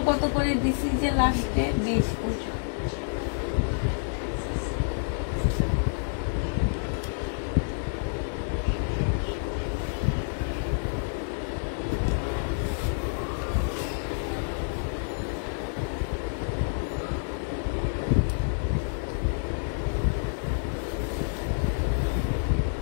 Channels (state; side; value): silent; right; digital silence